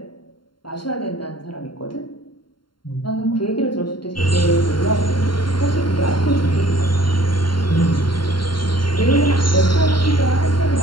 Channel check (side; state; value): right; late; 0.72 ms